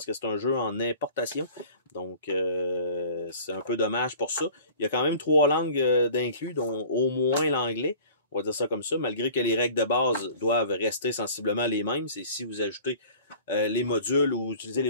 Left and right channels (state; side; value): inverted; both; correlation -0.45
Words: que c'est un jeu en importation. Donc, c'est un peu dommage pour ça. Il y a quand même 3 langues d'inclus, dont au moins l'anglais. On va dire ça comme ça, malgré que les règles de base doivent rester sensiblement les mêmes. C'est si vous ajoutez les modules ou utilisez les